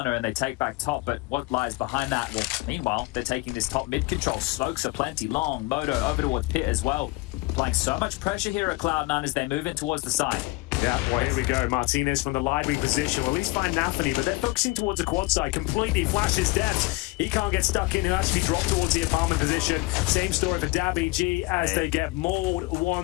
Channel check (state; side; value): quieter; right; 22.4 dB